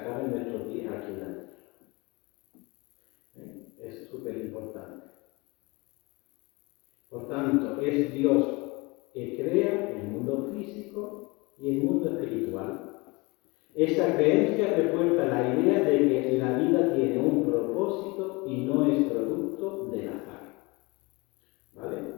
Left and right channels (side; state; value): right; quieter; 25.6 dB